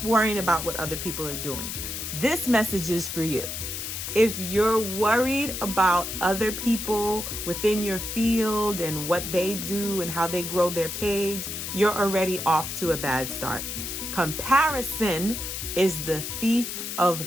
worrying about what other people are doing. This message is for you. If you're worried about other people within your field and what they do and how they grow their page, you're already off to a bad start. Comparison is the thief of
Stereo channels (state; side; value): noise; left; hiss, 5 dB below the sound